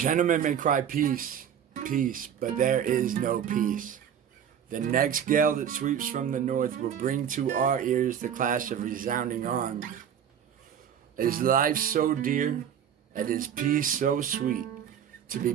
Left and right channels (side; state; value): left; quieter; 8.8 dB